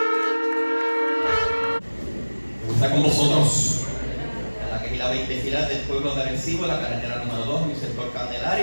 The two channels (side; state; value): both; inverted; correlation -1.00